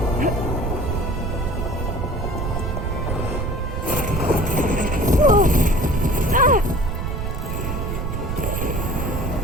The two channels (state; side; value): noise; right; rumble, 2 dB below the sound